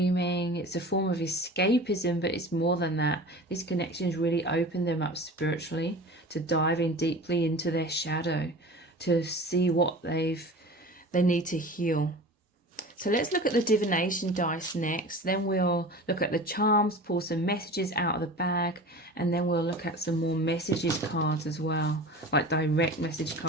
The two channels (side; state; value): both; normal; correlation 0.36